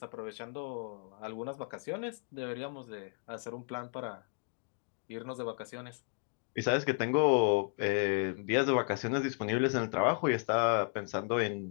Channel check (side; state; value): right; silent; 55 dB below the other